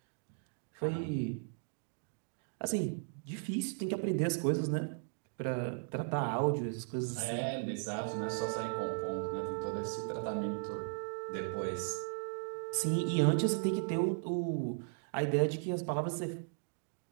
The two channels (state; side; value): silent; left; digital silence